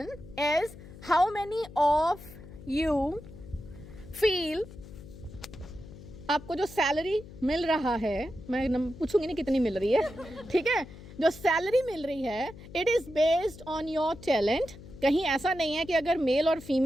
is, how many of you feel आपको जो सैलरी मिल रहा है, मैं पूछूंगी नहीं कितनी मिल रही है, ठीक है, जो सैलरी मिल रही है, it is based on your talent. कहीं ऐसा नहीं है कि अगर मेल और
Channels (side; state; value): left; noise; hum, 16 dB below the sound